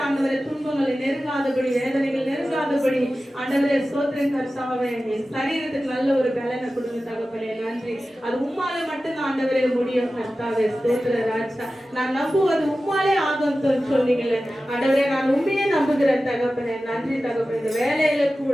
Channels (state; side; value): normal; both; correlation 0.95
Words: ஆண்டவரே துன்பங்களை நெருங்காதபடி வேதனைகள் நெருங்காதபடி ஆண்டவரே ஸ்தோத்திரம் கர்த்தாவே. என் சரீரத்துக்கு நல்ல ஒரு பலனை கொடுங்க தகப்பனே. நன்றி. அது உம்மாலே மட்டும் ஆண்டவரே முடியும் கர்த்தாவே ஸ்தோத்திர ராஜா. நான் நம்புவது உம்மாலே ஆகும் சொன்னீங்களே ஆண்டவரே. நான் உண்மையே நம்புகிறேன் தகப்பனே. நன்றி தகப்பனே. இந்த வேலையில